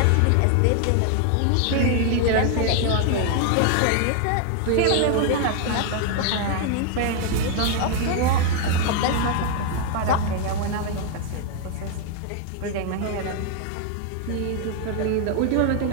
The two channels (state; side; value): different; both; correlation 0.00